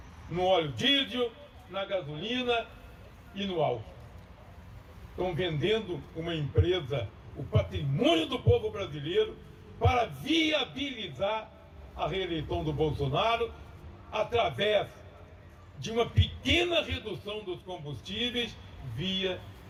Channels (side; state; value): both; identical; correlation 1.00